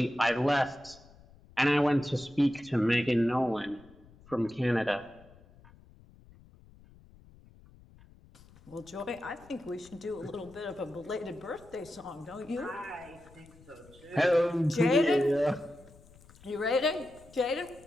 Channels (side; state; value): left; noise; rumble, 24 dB below the sound